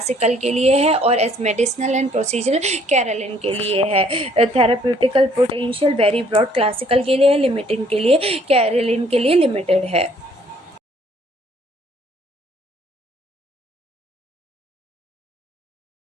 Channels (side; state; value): both; normal; correlation 0.62